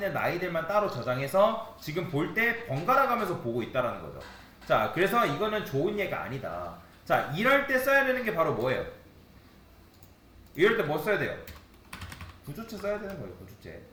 나이들만 따로 저장해서 지금 볼 때 번갈아 가면서 보고 있다는 거죠. 자 그래서 이거는 좋은 예가 아니다. 자 이럴 때 써야 되는 게 바로 뭐예요? 이럴 때 뭐 써야 돼요? 구조체 써야 되는 거예요.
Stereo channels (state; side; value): identical; both; correlation 1.00